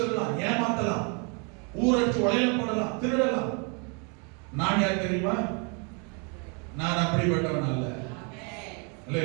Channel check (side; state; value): left; quieter; 35.0 dB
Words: ஏமாத்தலாம், ஊரடிச்சு உடையில போடலாம், திருடலாம். நான் யார் தெரியுமா? நான் அப்படிப்பட்டவன் அல்ல.